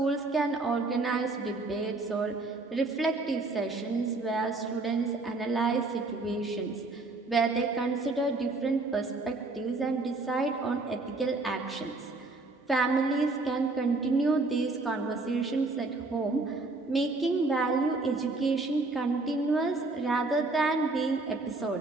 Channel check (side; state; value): left; quieter; 3.4 dB